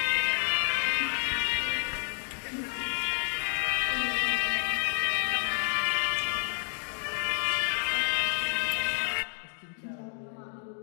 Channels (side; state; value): right; silent; digital silence